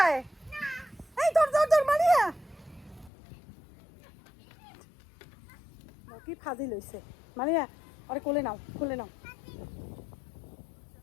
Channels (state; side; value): drops out; right; at 3.1 s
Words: এই ধর ধর ধর মারিয়া, কি ফাজি লইছে। মারিয়া আরে কোলে নাও, কোলে নাও।